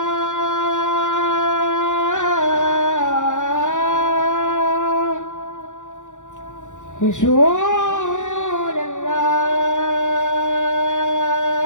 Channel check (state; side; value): late; right; 0.85 ms